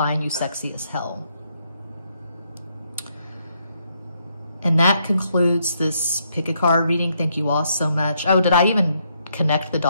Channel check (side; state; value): both; inverted; correlation -0.75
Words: you sexy as hell. And that concludes this pick a card reading. Thank you all so much. Oh, did I even connect the